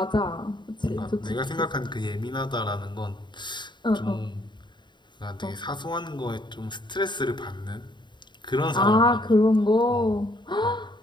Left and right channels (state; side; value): late; right; 0.22 ms